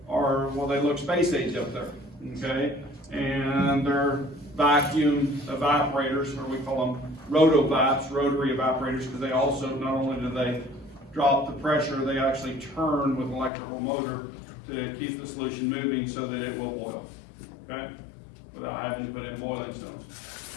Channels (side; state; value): right; drops out; at 13.5 s